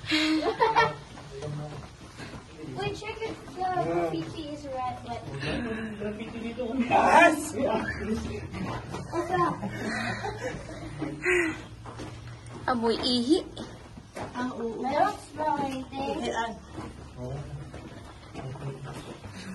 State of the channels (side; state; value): both; identical; correlation 1.00